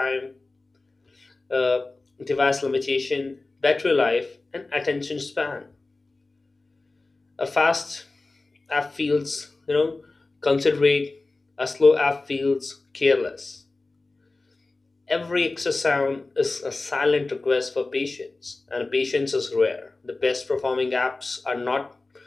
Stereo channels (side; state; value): right; quieter; 3.3 dB